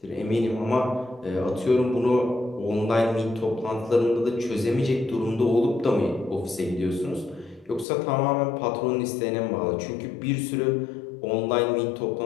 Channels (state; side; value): drops out; right; at 7.9 s